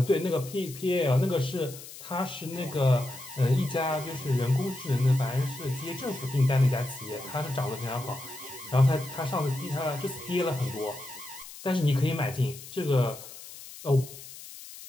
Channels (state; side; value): noise; left; hiss, 15 dB below the sound